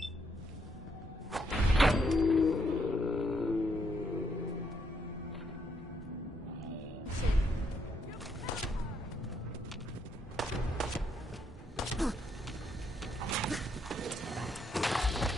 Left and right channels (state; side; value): normal; both; correlation 0.75